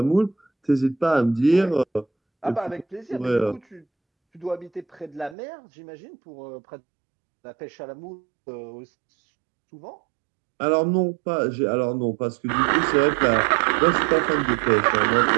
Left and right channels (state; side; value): drops out; left; at 5.4 s